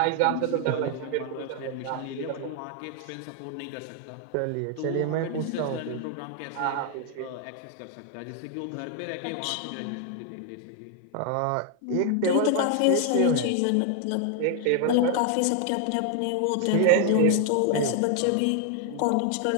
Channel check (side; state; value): both; different; correlation 0.00